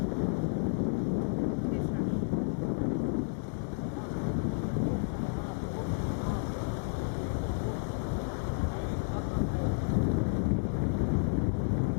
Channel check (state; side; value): silent; right; digital silence